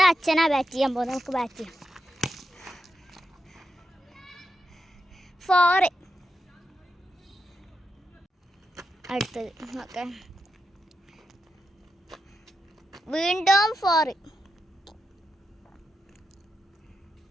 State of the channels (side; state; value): both; normal; correlation 0.86